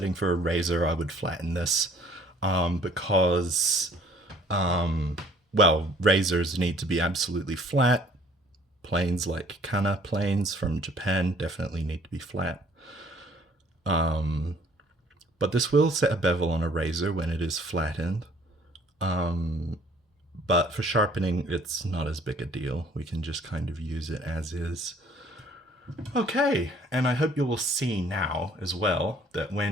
for a razor, I would flatten this because, well, razors need to be absolutely flat. Planes like Kana planes from Japan definitely need to be flat. But this will set a bevel on a razor when it is flattened. But for sharpening, it's not as big a deal. We can just kind of use it as is. Okay, and I hope you will see now as well that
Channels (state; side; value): normal; both; correlation 0.57